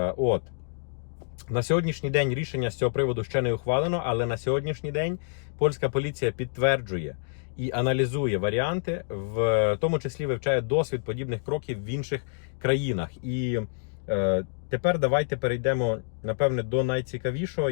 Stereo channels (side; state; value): right; silent; digital silence